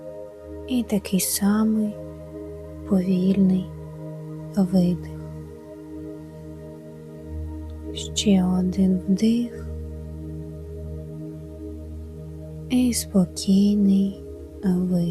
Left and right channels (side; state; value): both; identical; correlation 1.00